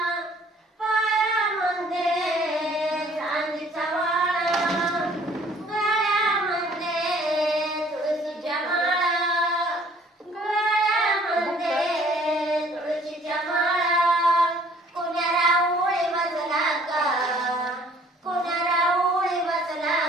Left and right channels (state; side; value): normal; both; correlation 0.57